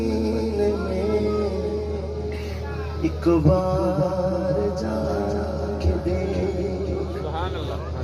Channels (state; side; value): identical; both; correlation 1.00